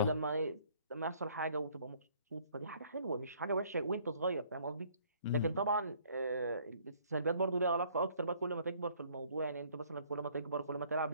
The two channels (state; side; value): inverted; both; correlation -0.60